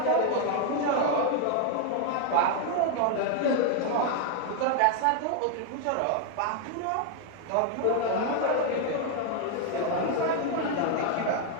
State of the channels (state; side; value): different; both; correlation 0.00